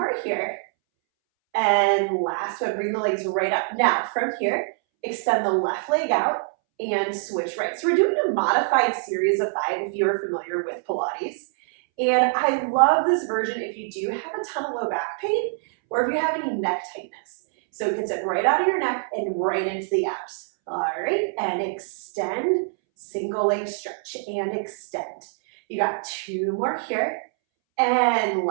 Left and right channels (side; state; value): left; silent; 62 dB below the other